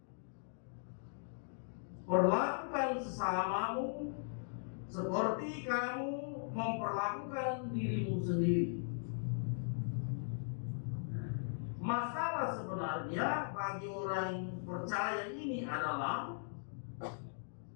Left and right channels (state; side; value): silent; right; digital silence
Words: Perlakukan sesamamu seperti kamu memperlakukan dirimu sendiri. Masalah sebenarnya bagi orang percaya ini adalah